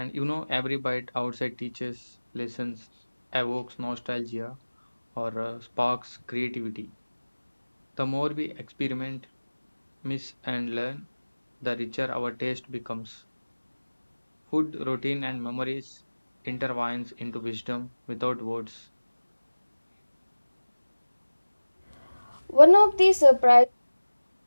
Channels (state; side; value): inverted; both; correlation -1.00